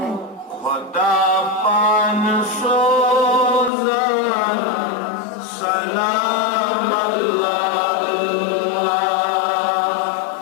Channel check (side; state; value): right; drops out; at 3.7 s